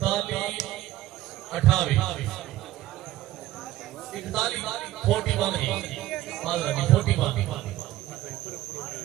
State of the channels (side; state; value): left; quieter; 15.2 dB